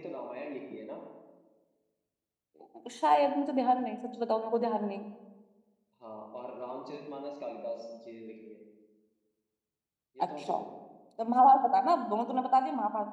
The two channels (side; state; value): both; identical; correlation 1.00